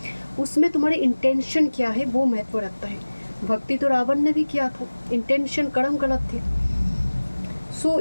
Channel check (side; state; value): both; inverted; correlation -1.00